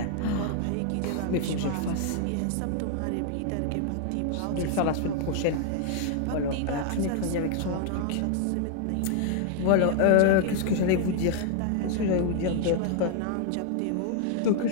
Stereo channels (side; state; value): both; different; correlation 0.00